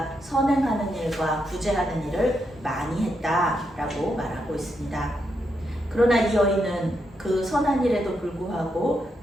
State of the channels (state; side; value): normal; both; correlation 0.82